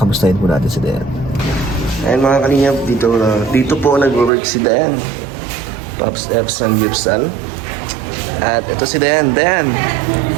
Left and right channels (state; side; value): drops out; left; at 4.3 s